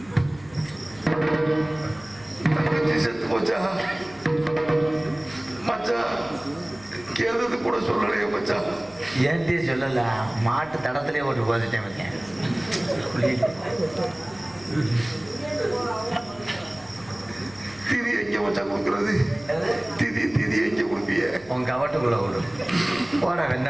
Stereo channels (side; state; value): left; noise; hum, 24 dB below the sound